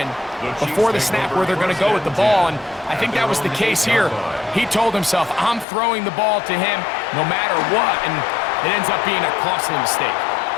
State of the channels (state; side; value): drops out; right; at 5.7 s